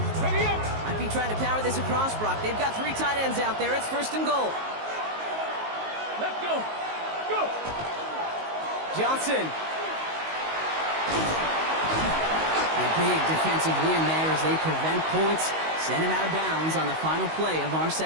Ready up. Might be trying to power this across, Brock. They've got 3 tight ends out there. It's 1st and goal. Let's go. Go. Johnson. A big defensive win there as they prevent points, send him out of bounds on the final play of our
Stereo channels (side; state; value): left; late; 19 ms